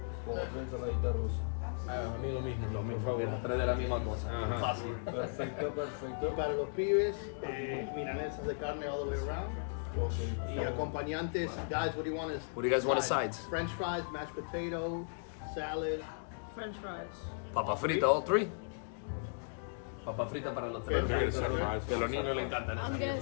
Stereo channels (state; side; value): silent; right; digital silence